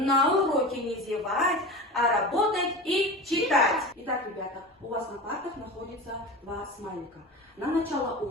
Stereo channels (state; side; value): normal; both; correlation 0.30